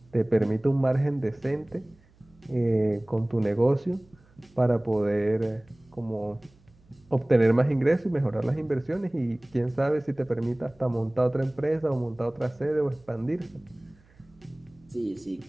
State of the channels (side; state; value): right; noise; hum, 30 dB below the sound